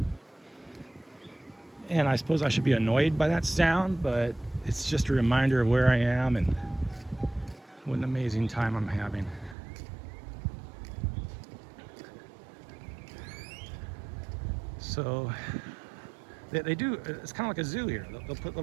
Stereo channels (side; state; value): left; drops out; at 9.6 s